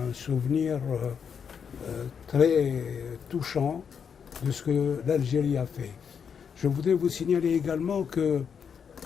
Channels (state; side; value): quieter; right; 7.0 dB